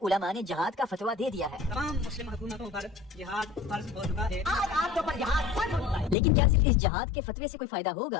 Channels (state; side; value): drops out; right; at 6.2 s